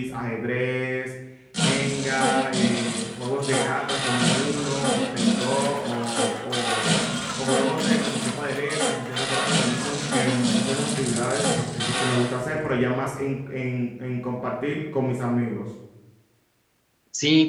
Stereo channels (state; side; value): identical; both; correlation 1.00